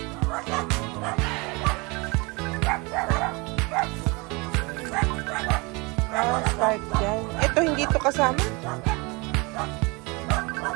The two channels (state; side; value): quieter; left; 27.1 dB